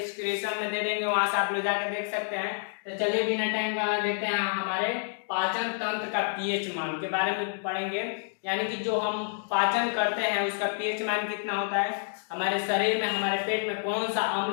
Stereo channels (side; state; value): right; silent; digital silence